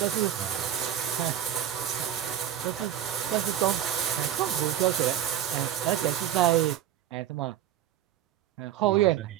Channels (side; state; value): left; quieter; 10.9 dB